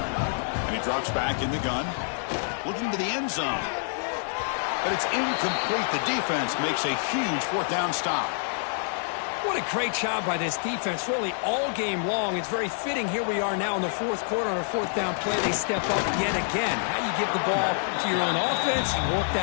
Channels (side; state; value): right; silent; 60 dB below the other